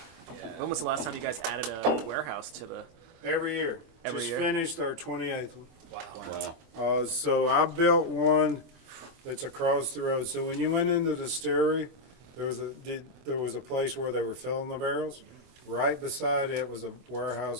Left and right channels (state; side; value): late; left; 24 ms